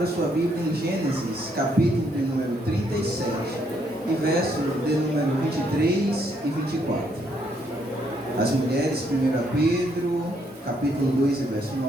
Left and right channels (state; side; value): normal; both; correlation 0.72